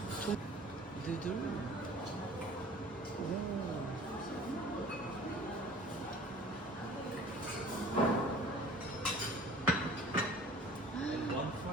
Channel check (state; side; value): normal; both; correlation 0.46